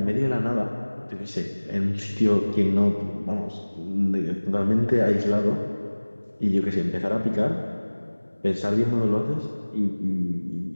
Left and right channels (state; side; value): inverted; both; correlation -1.00